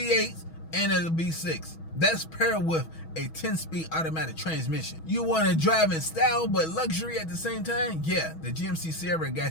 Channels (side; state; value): right; late; 6.2 ms